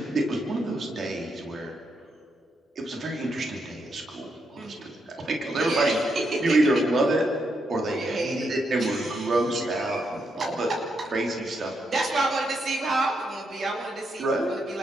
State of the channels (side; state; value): both; normal; correlation 0.80